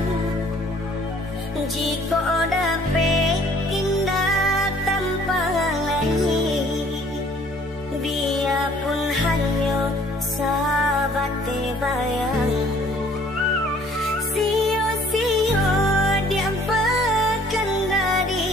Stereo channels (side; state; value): both; normal; correlation 0.57